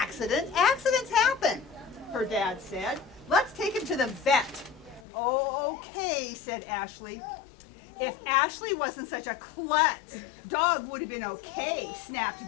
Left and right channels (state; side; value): drops out; right; at 5.1 s